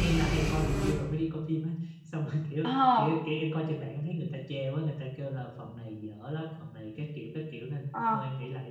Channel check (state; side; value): identical; both; correlation 1.00